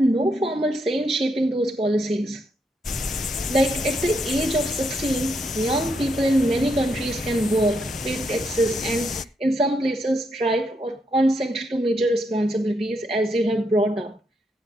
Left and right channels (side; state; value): both; normal; correlation 0.78